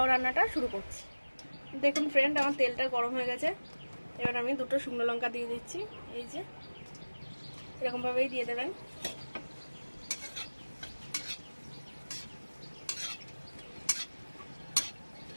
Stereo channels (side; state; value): both; inverted; correlation -1.00